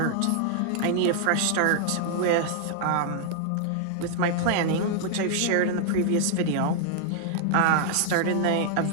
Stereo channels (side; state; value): both; different; correlation -0.01